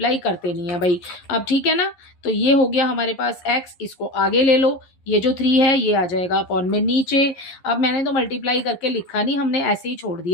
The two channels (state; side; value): late; right; 11 ms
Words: करते नहीं है भाई अब। ठीक है ना, तो ये हो गया हमारे पास x, इसको आगे ले लो, ये जो 3 है ये आ जाएगा अपॉन में नीचे। अब मैंने तो मल्टीप्लाई करके लिखा नहीं, हमने ऐसे ही छोड़